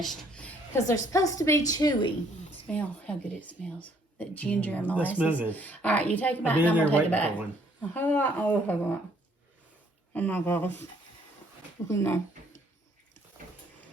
because they're supposed to be chewy. Smell how good it smells. That ginger and molasses. That smells good. All right, you take them out and I'm going to take it back. Oh my gosh. Look in there.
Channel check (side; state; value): both; normal; correlation 0.64